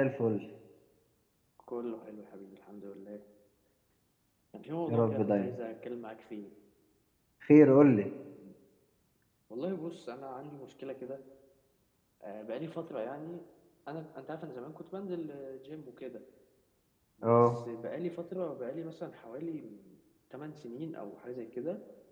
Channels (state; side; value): identical; both; correlation 1.00